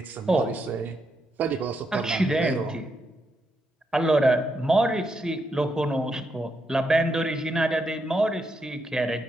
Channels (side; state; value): both; normal; correlation 0.81